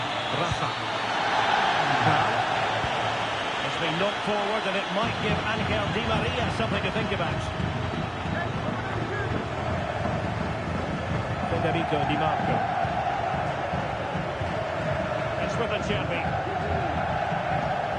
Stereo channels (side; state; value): both; identical; correlation 1.00